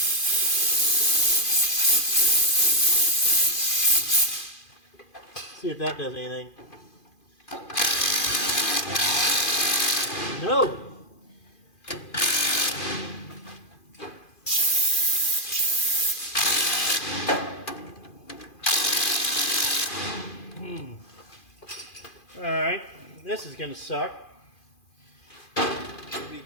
See if that does anything. Oh. All right, this is gonna suck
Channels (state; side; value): late; right; 2.4 ms